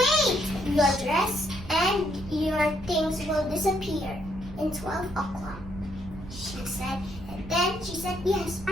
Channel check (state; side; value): noise; right; rumble, 14 dB below the sound